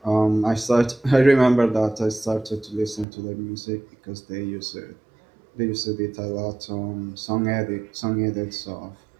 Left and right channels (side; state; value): left; drops out; at 3.1 s